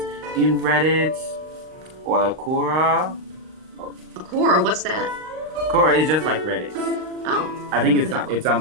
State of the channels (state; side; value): late; left; 39 ms